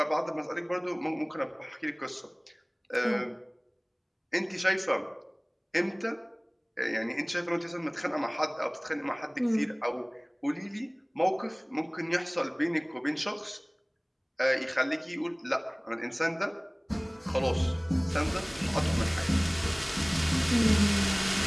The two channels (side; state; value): both; identical; correlation 1.00